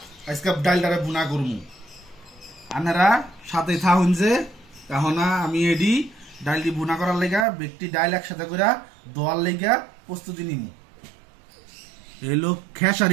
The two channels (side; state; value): left; drops out; at 7.5 s